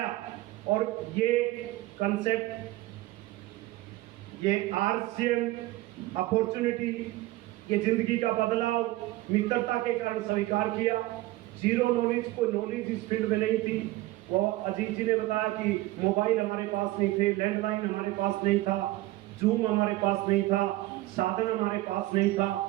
और ये कंसेप्ट, ये आरसीएम अपॉर्चुनिटी, ये जिंदगी का बदलाव मित्रता के कारण स्वीकार किया। जीरो नॉलेज, कोई नॉलेज इस फील्ड में नहीं थी। वो अजीत जी ने बताया कि मोबाइल हमारे पास नहीं थे, लैंडलाइन हमारे पास नहीं था, जूम हमारे पास नहीं था, साधन हमारे पास नहीं था।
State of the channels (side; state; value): left; quieter; 17.9 dB